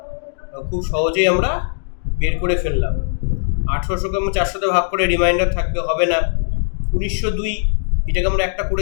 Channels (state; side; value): silent; right; digital silence